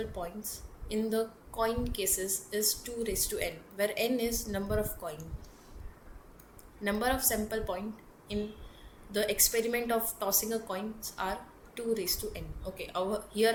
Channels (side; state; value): both; identical; correlation 1.00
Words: points in the coin cases is 2 raised to n, where n is number of coin. Number of sample point in the experiment of tossing a coins are 2 raised to n. Okay, here